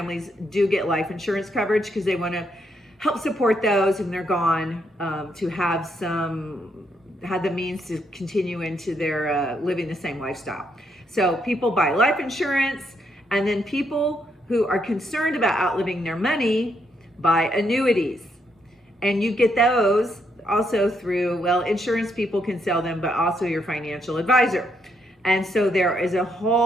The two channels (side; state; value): both; normal; correlation 0.77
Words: do get life insurance coverage because they want to help support those and they're gone, to have the means to continue into their living the same lifestyle. So people buy life insurance, and then people who are concerned about outliving their money buy annuities. And you get those also through, well, insurance people can sell them, but also your financial advisor. And so there is a